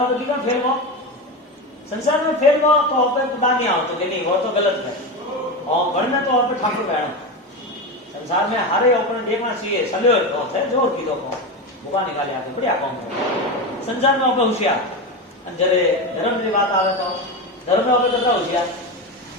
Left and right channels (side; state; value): both; normal; correlation 0.19